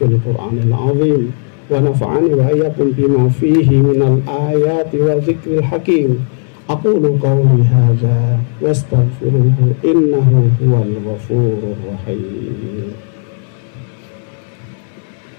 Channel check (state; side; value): silent; right; 58 dB below the other